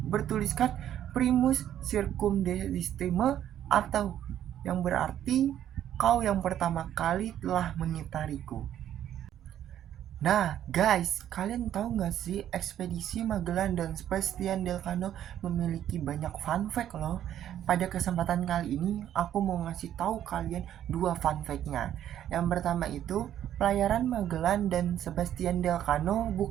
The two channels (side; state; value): left; quieter; 11.0 dB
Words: bertuliskan Primus Circumdestime, atau yang berarti kau yang pertama kali telah mengitariku. Nah guys, kalian tahu nggak sih ekspedisi Magellan dan Sebastian del Cano memiliki banyak fun fact loh. Pada kesempatan kali ini aku mau ngasih tahu kalian 2 fun fact-nya. Yang pertama itu, pelayaran Magellan dan Sebastian del Cano